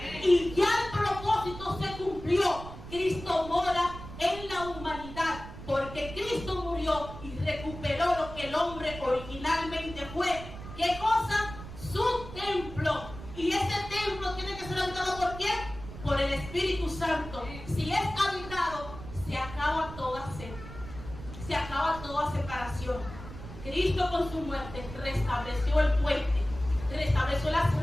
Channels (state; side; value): noise; right; rumble, 12 dB below the sound